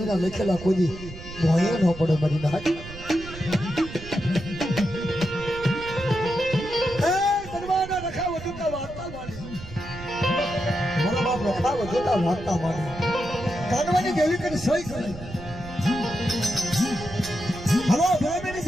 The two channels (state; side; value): noise; right; rumble, 13 dB below the sound